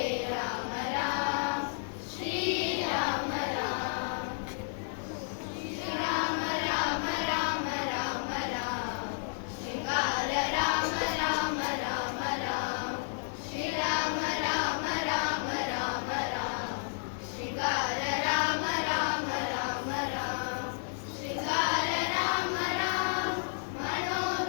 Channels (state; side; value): silent; right; 56 dB below the other